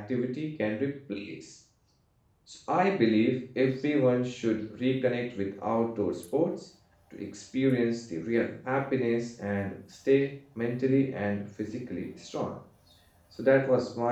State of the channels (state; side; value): identical; both; correlation 1.00